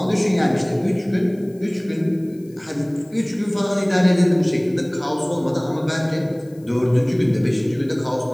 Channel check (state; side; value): noise; left; hiss, 30 dB below the sound